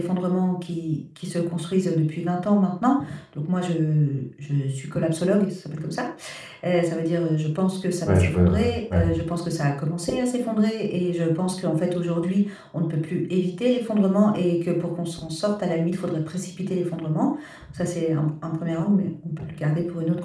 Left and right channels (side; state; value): both; identical; correlation 1.00